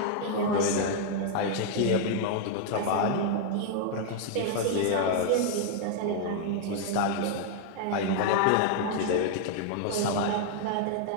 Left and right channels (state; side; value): different; both; correlation 0.00